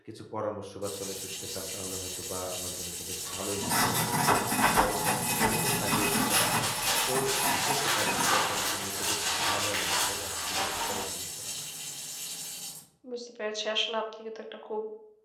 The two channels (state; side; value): identical; both; correlation 1.00